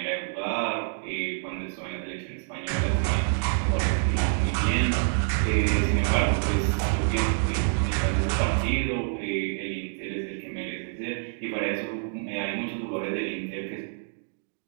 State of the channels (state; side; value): silent; left; digital silence